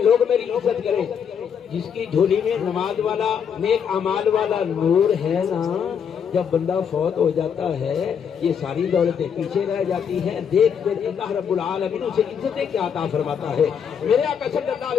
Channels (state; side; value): quieter; right; 7.5 dB